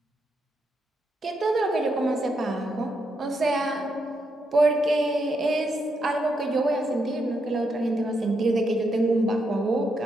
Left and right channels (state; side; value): normal; both; correlation 0.80